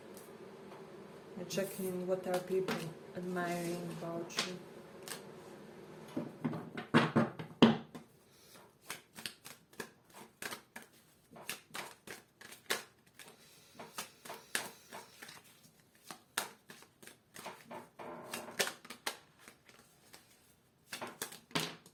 I'm checking what are people admiring about you.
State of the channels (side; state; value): both; identical; correlation 1.00